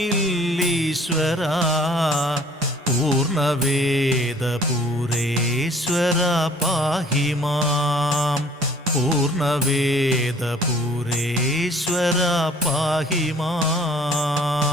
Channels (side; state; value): both; normal; correlation 0.54